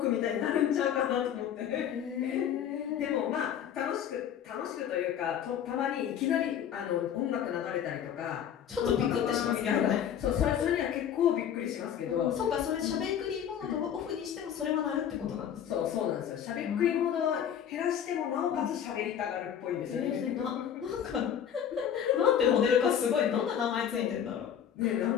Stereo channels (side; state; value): right; quieter; 9.1 dB